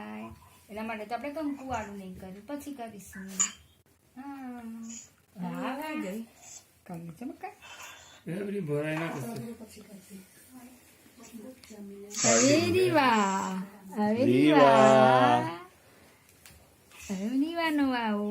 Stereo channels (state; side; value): identical; both; correlation 1.00